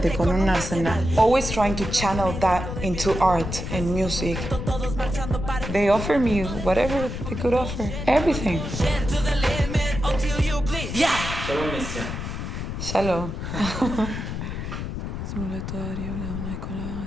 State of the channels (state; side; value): noise; left; rumble, 5 dB below the sound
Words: con un arsenal. Always trying to channel that into art and music. They offered me whatever they could offer. Everything. Shalom, Nesya. Shalom.